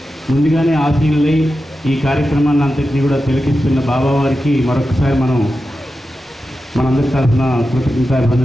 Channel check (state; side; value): normal; both; correlation 0.91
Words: ముందుగానే ఆశీనులై ఈ కార్యక్రమాన్ని అంతటినీ కూడా తిలకిస్తున్న బాబా వారికి మరొకసారి మనందరి తరఫున